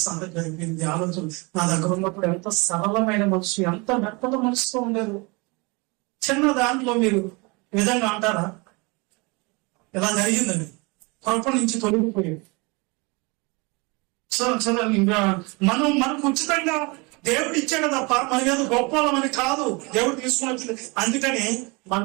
అంతా చెడిపోయింది. ఆలోచన నా దగ్గర ఉన్నప్పుడు ఎంత సరళమైన మనసు, ఎంత మెత్తల మనసుతో ఉండేది. చిన్న దాంట్లో మీరు ఈ విధంగా అంటారా? ఇలా జరిగిందండి, కృప నుంచి తొలగిపోయేది. ఇంకా మనకు ఉచితంగా దేవుడు ఇచ్చాడు తప్ప మన ఏదో గొప్పవాళ్ళమని కాదు దేవుడు తీసుకుని వచ్చింది. అందుకని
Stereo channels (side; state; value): left; quieter; 27.9 dB